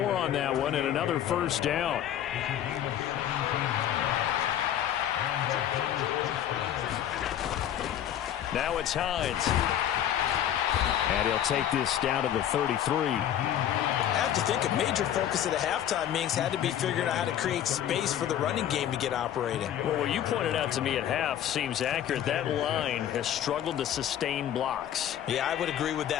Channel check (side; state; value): right; quieter; 10.7 dB